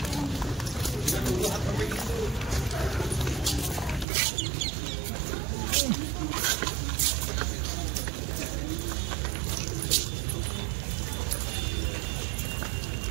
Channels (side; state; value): left; drops out; at 4.0 s